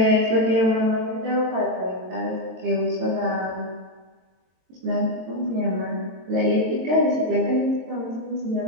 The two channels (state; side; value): late; left; 22 ms